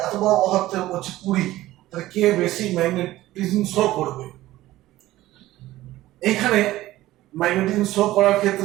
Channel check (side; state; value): left; quieter; 16.1 dB